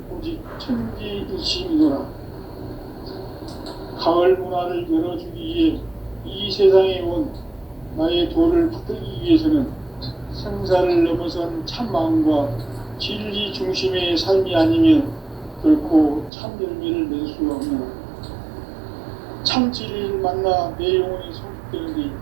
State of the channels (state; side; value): drops out; left; at 16.3 s